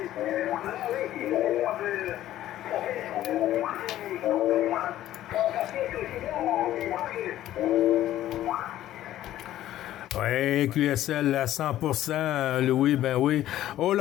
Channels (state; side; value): quieter; right; 13.4 dB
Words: Oui, QSL à 100%, Louis, ben oui.